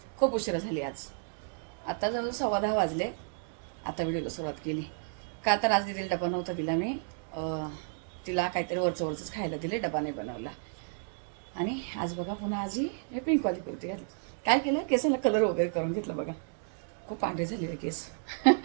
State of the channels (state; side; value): silent; left; digital silence